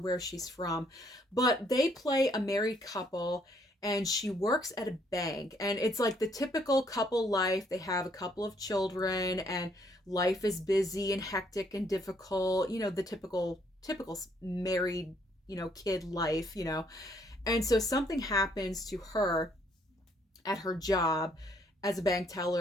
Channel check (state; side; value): normal; both; correlation 0.68